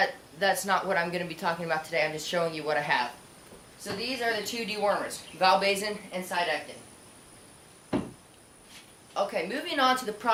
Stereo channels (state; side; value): identical; both; correlation 1.00